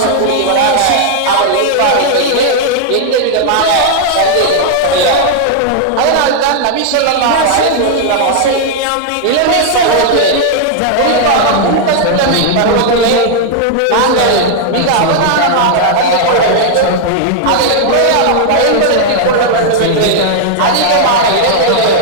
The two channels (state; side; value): different; both; correlation 0.00